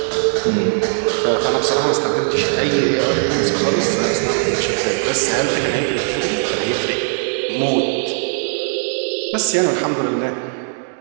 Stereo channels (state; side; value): silent; left; 58 dB below the other